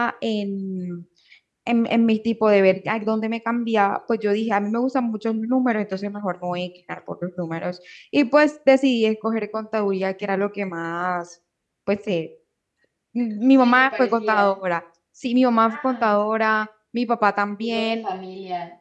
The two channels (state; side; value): identical; both; correlation 1.00